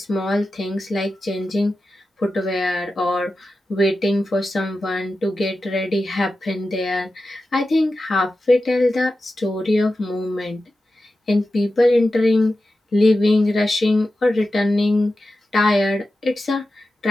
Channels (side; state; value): both; normal; correlation 0.92